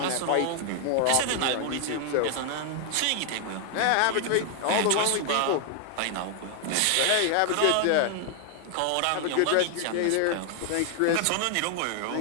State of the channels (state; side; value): different; both; correlation 0.00